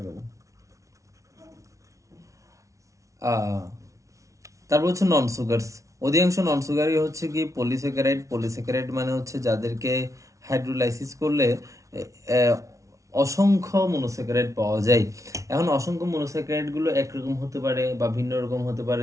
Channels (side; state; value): left; late; 0.15 ms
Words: তারপর হচ্ছে নন সুগারস। অধিকাংশ নন সুগারই হচ্ছে কি পলিস্যাকারাইড। পলিস্যাকারাইড মানে হচ্ছে যাদেরকে হাইড্রোলাইসিস করলে অসংখ্য মনোস্যাকারাইড পাওয়া যায়। এখন অসংখ্য মনোস্যাকারাইড গুলো একরকম হতে পারে বা ভিন্ন রকম হতে পারে,